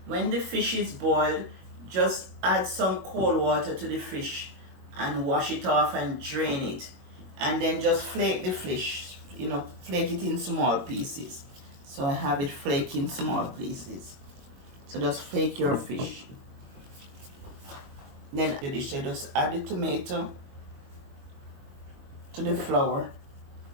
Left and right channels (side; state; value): left; late; 22 ms